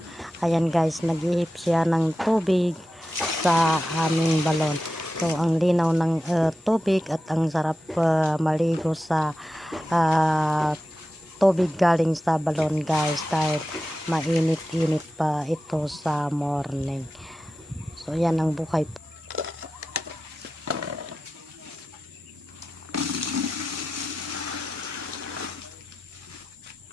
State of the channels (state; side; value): normal; both; correlation 0.92